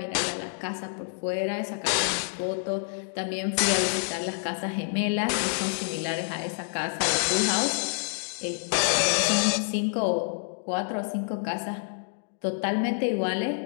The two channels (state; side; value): silent; right; digital silence